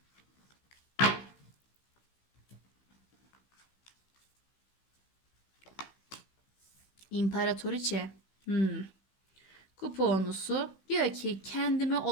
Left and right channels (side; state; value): right; late; 16 ms